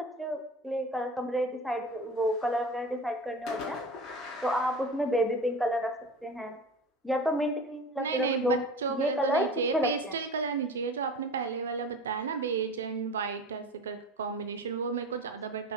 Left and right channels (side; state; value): both; normal; correlation 0.35